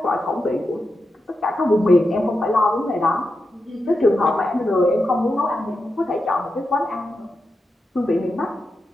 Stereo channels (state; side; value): normal; both; correlation 0.88